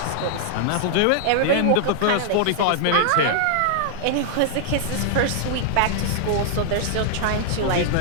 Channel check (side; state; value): both; different; correlation -0.01